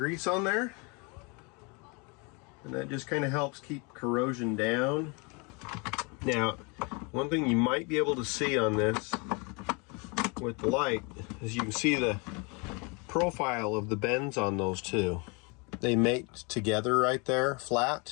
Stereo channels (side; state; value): right; quieter; 30.8 dB